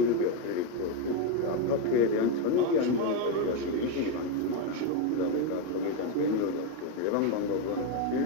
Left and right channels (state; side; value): different; both; correlation 0.03